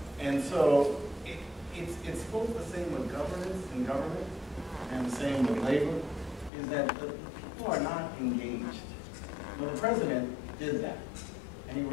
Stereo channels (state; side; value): drops out; right; at 6.5 s